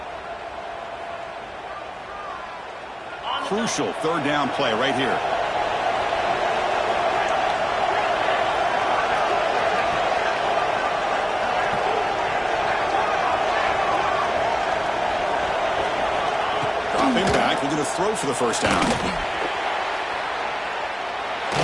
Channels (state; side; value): identical; both; correlation 1.00